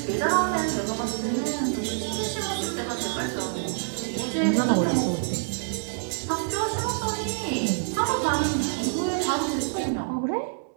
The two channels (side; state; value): left; silent; 60 dB below the other